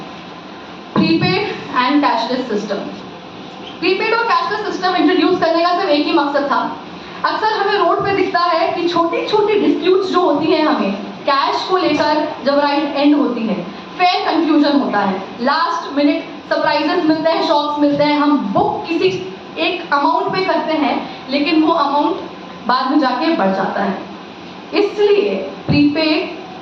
prepaid and cashless system. Prepaid और कैशलेस सिस्टम इंट्रोड्यूस करने का सिर्फ एक ही मकसद था। अक्सर हमें रोड पे दिखता है कि छोटी छोटी डिस्प्यूट्स जो होती हैं हमें कैश को लेकर जब राइड एंड होती है, फेयर कंफ्यूजन होता है, लास्ट मिनट सरप्राइजेस मिलते हैं, शॉक्स मिलते हैं। हम बुक किसी एक अमाउंट पे करते हैं लेकिन वो अमाउंट बाद में जाके बढ़ जाता है। इसलिए प्रीपेड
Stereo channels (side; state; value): both; identical; correlation 1.00